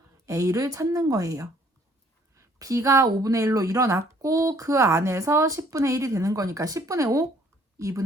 A를 찾는 거예요. B가 5분의 1로 일어났고 그 안에서 10분의 1이 되는 거니까 10분의 5,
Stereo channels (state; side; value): normal; both; correlation 0.60